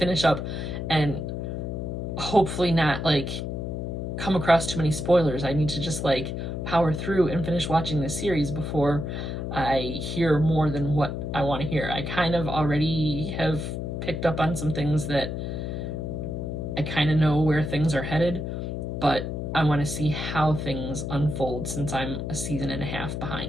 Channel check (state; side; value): noise; left; hum, 4 dB below the sound